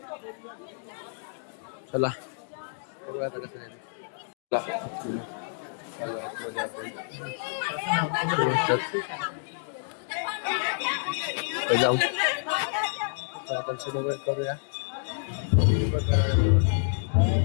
चला बघूया आता कसं आहे. जाऊ दर्शन वगैरे करूया.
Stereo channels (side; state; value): right; silent; digital silence